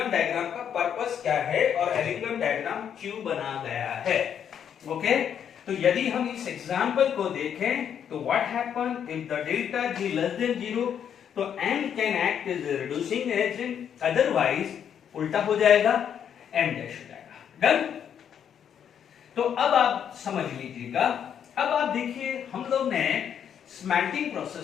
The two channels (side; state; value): right; quieter; 8.6 dB